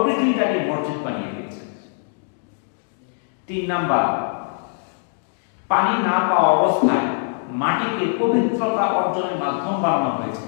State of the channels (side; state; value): right; silent; 64 dB below the other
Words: পৃথিবীটাকে মসজিদ বানিয়ে দিয়েছে। 3 নাম্বার, পানি না পাওয়া অবস্থায় মাটিকে পবিত্রতা অর্জনের মাধ্যম বানানো হয়েছে।